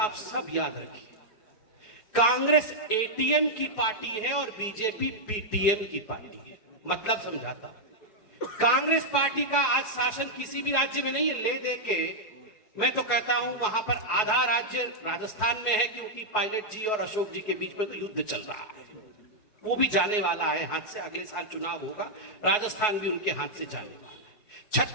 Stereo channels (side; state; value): right; late; 4.7 ms